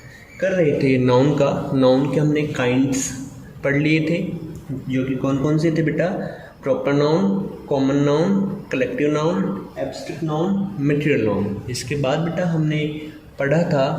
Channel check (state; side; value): identical; both; correlation 1.00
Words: कर रहे थे नाउन का। नाउन के हमने काइंड्स पढ़ लिए थे, जो कि कौन कौन से थे बेटा? Proper noun, common noun, collective noun, abstract noun, material noun. इसके बाद बेटा हमने पढ़ा